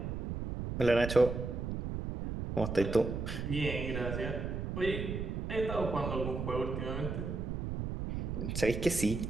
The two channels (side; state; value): right; noise; rumble, 4 dB below the sound